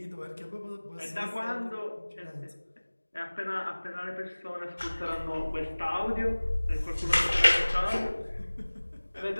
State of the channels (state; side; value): inverted; both; correlation -1.00